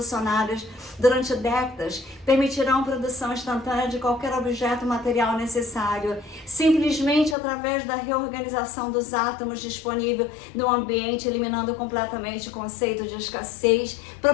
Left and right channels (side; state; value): right; drops out; at 7.4 s